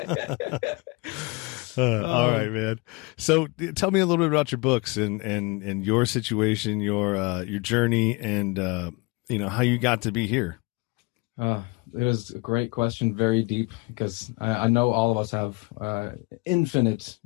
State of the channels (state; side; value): quieter; right; 27.3 dB